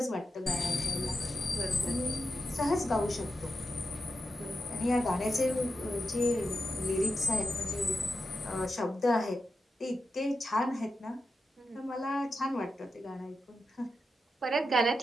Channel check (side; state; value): both; normal; correlation 0.88